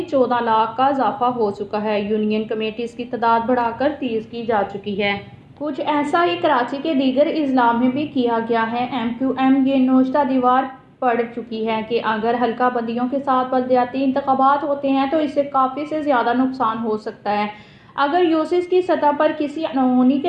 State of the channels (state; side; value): identical; both; correlation 1.00